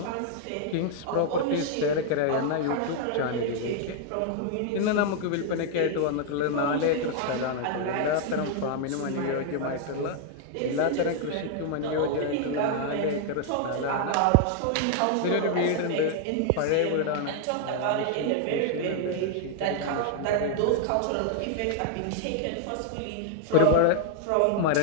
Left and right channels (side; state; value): both; different; correlation 0.00